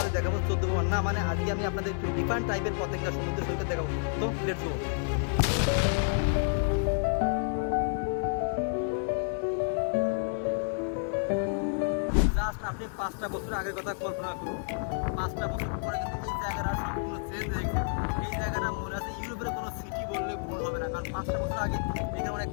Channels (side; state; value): right; silent; 58 dB below the other